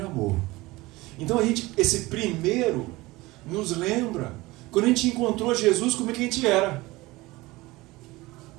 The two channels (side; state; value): left; quieter; 20.5 dB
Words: amor. Então esse primeiro nos lembra quando a gente encontrou Jesus, como é que a gente era.